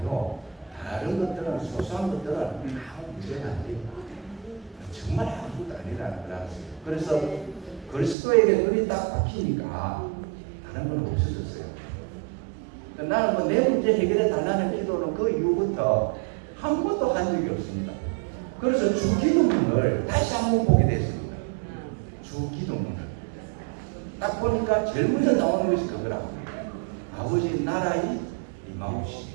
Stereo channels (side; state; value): left; drops out; at 8.2 s